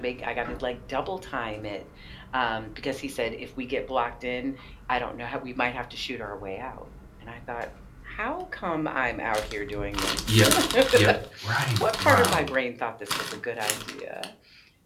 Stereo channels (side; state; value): both; identical; correlation 1.00